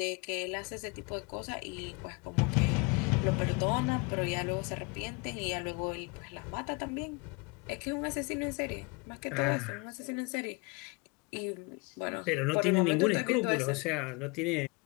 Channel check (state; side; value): quieter; right; 29.3 dB